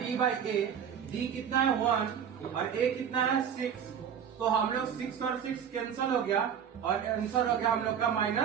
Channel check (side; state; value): left; quieter; 8.2 dB